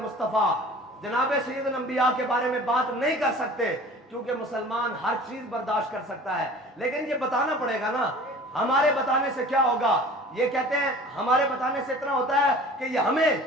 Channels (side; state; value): both; normal; correlation 0.44